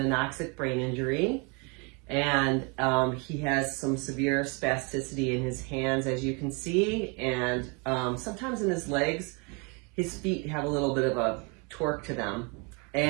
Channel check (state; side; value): quieter; left; 32.3 dB